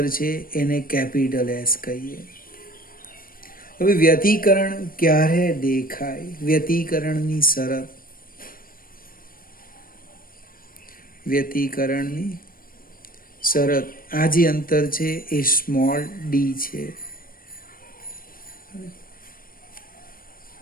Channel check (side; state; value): right; late; 0.41 ms